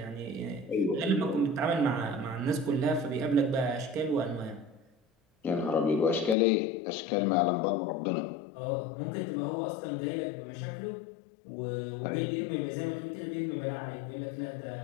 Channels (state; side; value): drops out; right; at 6.4 s